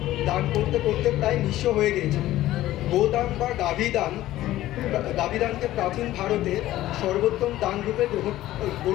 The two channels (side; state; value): right; quieter; 14.9 dB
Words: দান করতে করতে প্রায় নিঃস্ব হয়ে গিয়েছিলেন। গোদান বা গাভীদানকে প্রাচীন ভারতে সর্বোত্তম দান রূপে